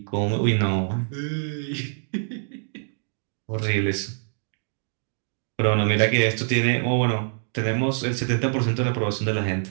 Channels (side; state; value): left; silent; 61 dB below the other